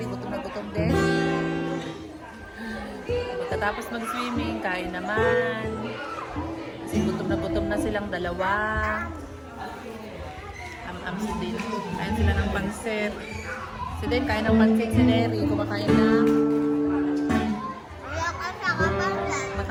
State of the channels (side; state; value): both; identical; correlation 1.00